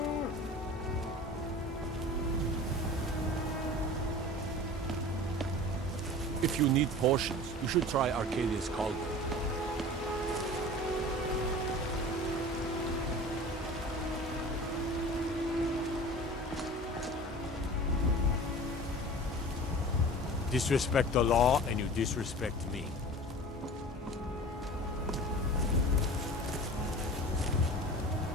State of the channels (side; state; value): both; normal; correlation 0.38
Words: If you need potions, you should try Arcadia's Cauldron. Disrespect the law, and you disrespect me.